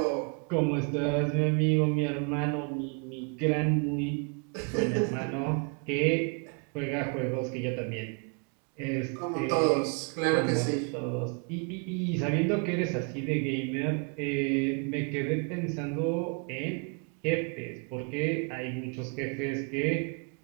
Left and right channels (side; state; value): left; quieter; 37.2 dB